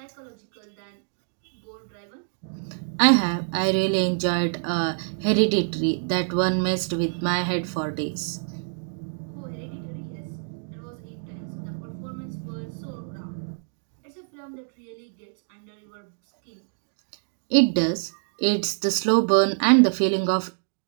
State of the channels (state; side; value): silent; left; 61 dB below the other